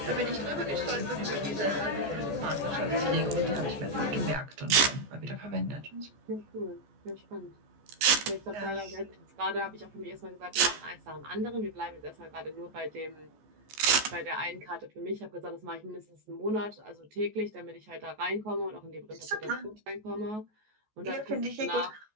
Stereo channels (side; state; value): left; late; 14 ms